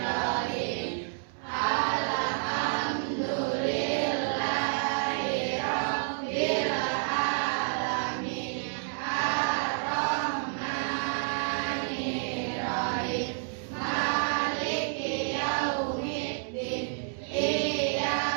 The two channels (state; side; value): silent; left; 58 dB below the other